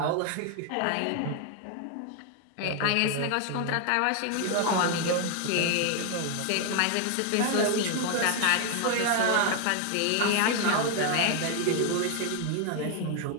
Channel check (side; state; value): both; different; correlation 0.01